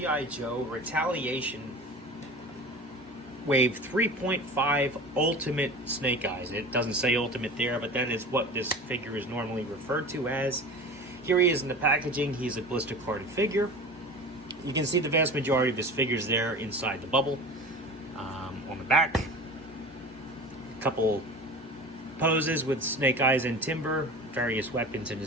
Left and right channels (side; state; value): both; normal; correlation 0.35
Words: Joe Retaliation Wave 3.5 Ultimate Snake Eyes. It doesn't say Ultimate there, but that is what this figure is normally referred to as. Here he is in the packaging. He's a blister carded figure. You can see the vast majority of his figures there inside the bubble. On the back, a couple poses with Snake Eyes and Timber, various weapons in